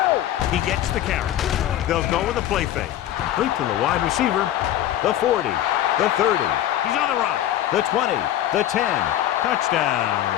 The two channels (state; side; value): quieter; right; 12.4 dB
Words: He gets the carry. They'll go with a play fake. Complete to the wide receiver. The 40. The 30. He's on the run. The 20. The 10.